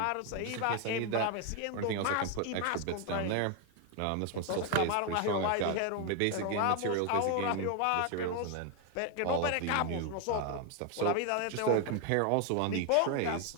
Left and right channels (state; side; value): different; both; correlation 0.01